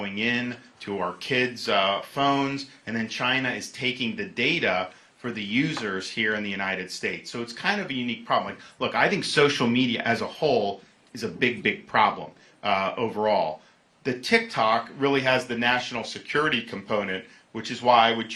in to our kids' phones, and then China is taking the data for the users here in the United States. So it's kind of a unique problem. Like, look, I think social media as a whole is a big, big problem overall. The TikTok really has the national security component, which is why I would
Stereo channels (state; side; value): identical; both; correlation 1.00